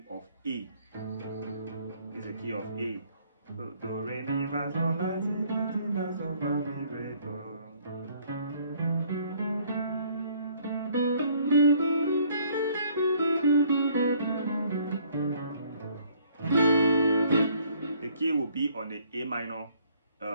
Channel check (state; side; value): inverted; both; correlation -0.61